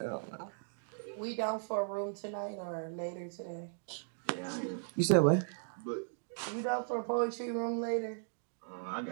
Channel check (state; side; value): silent; left; digital silence